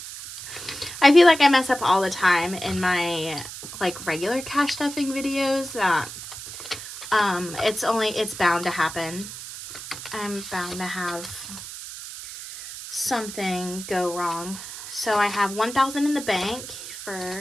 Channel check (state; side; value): noise; right; hiss, 11 dB below the sound